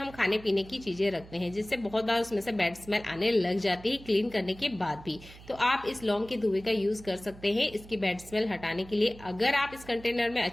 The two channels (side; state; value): right; noise; hum, 19 dB below the sound